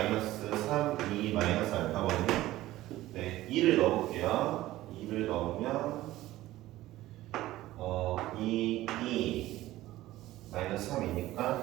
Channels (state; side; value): quieter; left; 16.0 dB